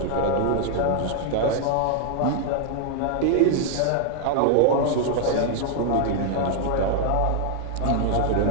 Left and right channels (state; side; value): different; both; correlation 0.00